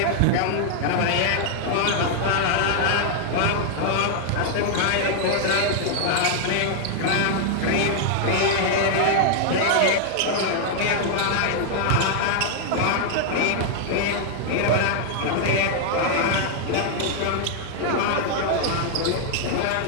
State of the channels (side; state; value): both; different; correlation -0.01